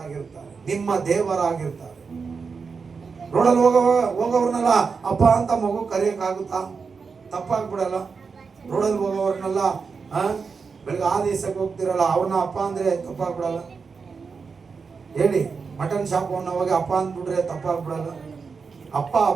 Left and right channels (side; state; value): left; quieter; 5.2 dB